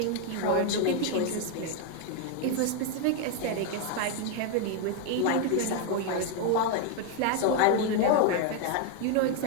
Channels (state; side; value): different; both; correlation 0.01